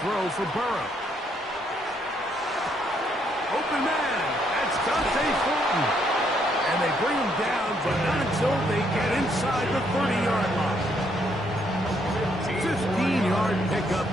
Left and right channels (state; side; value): normal; both; correlation 0.72